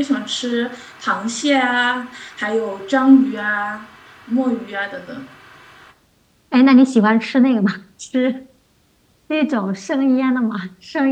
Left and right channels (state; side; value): identical; both; correlation 1.00